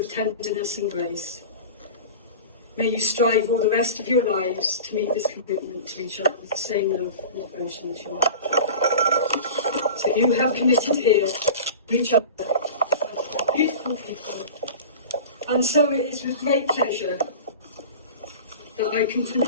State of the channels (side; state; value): both; inverted; correlation -0.34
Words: tenderness and grace. May you strive all the rest of your lives to meet this commitment to each other with the same love and devotion as you have. So you have committed here to each other as beautiful people. And so it is with great pleasure that I can